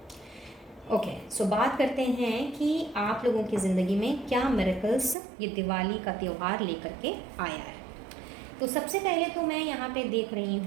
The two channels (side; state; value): left; drops out; at 5.2 s